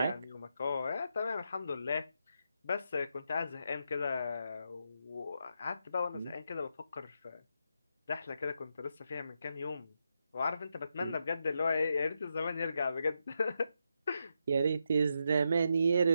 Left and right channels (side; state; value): both; inverted; correlation -0.83